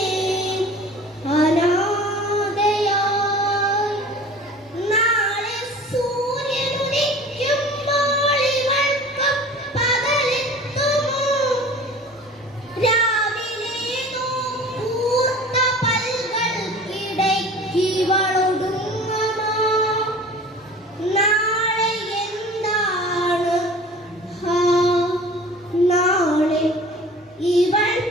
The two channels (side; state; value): both; normal; correlation 0.43